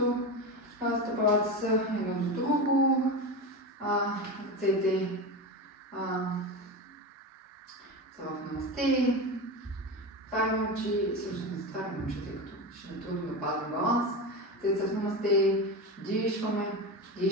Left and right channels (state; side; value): normal; both; correlation 0.21